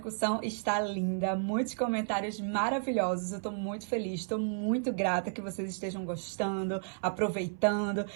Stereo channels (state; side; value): silent; left; 56 dB below the other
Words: está linda, muitos comentários maravilhosos. Eu tô muito feliz, tô muito grata que vocês estejam gostando, aproveitando.